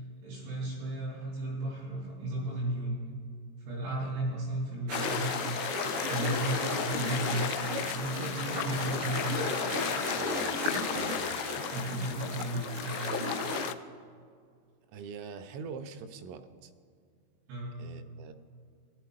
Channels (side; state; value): left; late; 22 ms